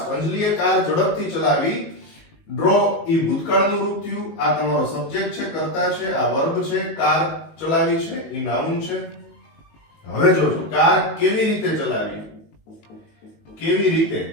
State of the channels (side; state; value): right; late; 18 ms